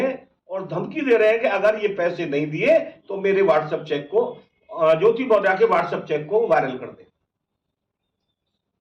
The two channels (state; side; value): identical; both; correlation 1.00